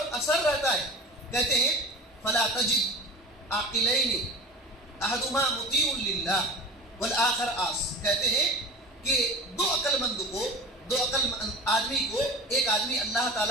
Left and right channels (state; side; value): normal; both; correlation 0.33